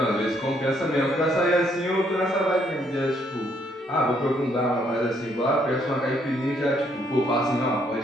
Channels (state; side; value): normal; both; correlation 0.70